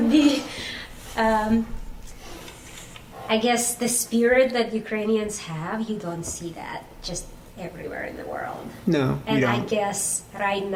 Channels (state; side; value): identical; both; correlation 1.00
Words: be, I guess, the spirit that Ukrainians have, you don't see that just everywhere in the world. No, And you I don't. guess right